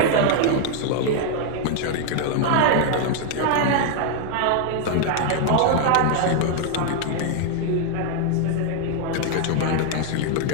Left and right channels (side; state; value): both; different; correlation 0.00